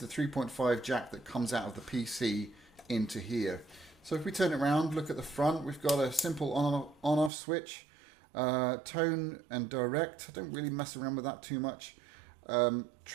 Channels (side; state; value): left; drops out; at 7.3 s